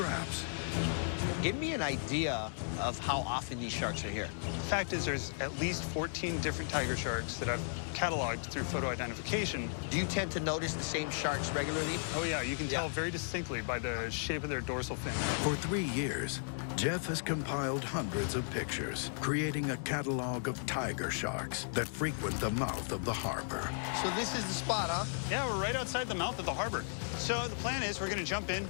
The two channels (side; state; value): right; silent; digital silence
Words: Give me an idea of how often these sharks are here. The fact is there's at least 14 different tiger sharks that I've cataloged through photo identification. Do you tend to notice the same sharks regularly? Oh yeah, you can tell very distinctly by the shape of their dorsal fin. For 3 years, Jeff has compiled hundreds of pictures, creating a catalog of tiger sharks that frequent the mouth of the harbor. So this is the spot, huh? Yeah, we're right outside the mouth of the harbor. So the plan is we're going to jump in.